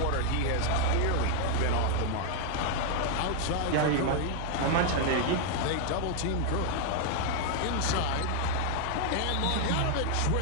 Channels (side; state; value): both; different; correlation 0.00